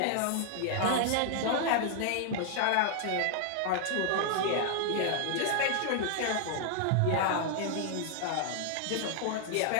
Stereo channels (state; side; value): different; both; correlation 0.00